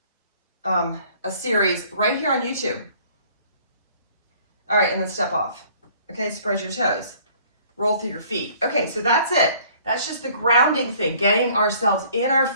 a series right here on YouTube. All right, and then step off. Okay, spread your toes. Roll through your feet. Okay, so that's it. That's just the grounding thing, getting ourselves in our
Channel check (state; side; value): inverted; both; correlation -0.56